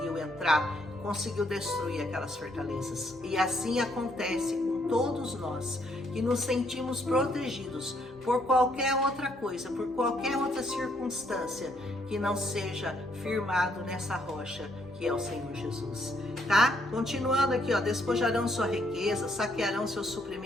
entrar, conseguiu destruir aquelas fortalezas. E assim acontece com todos nós que nos sentimos protegidos por qualquer outra coisa, por qualquer outra circunstância que não seja firmado nessa rocha que é o Senhor Jesus, tá? Continuando aqui, ó, despojarão sua riqueza, saquearão seus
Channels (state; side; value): normal; both; correlation 0.71